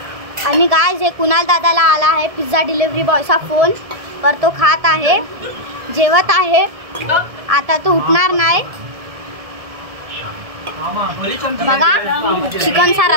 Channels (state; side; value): late; left; 1.7 ms